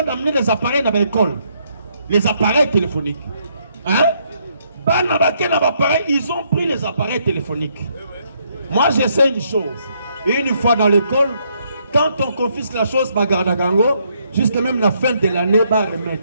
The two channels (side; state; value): both; inverted; correlation -0.72